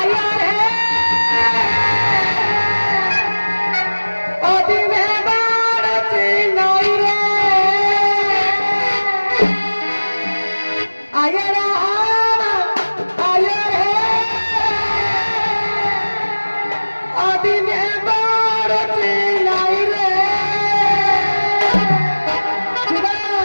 অদিনে বাড়ছে নাই রে আয়ারা আয়ারে অদিনে বাড়ছে নাই রে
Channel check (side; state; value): both; inverted; correlation -1.00